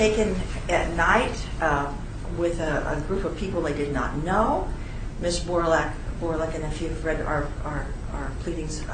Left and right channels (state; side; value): identical; both; correlation 1.00